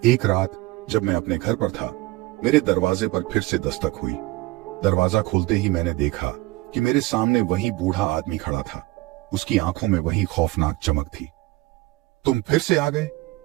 एक रात जब मैं अपने घर पर था, मेरे दरवाजे पर फिर से दस्तक हुई। दरवाजा खोलते ही मैंने देखा कि मेरे सामने वही बूढ़ा आदमी खड़ा था। उसकी आंखों में वही खौफनाक चमक थी। तुम फिर से आ गए?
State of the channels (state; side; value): quieter; left; 20.3 dB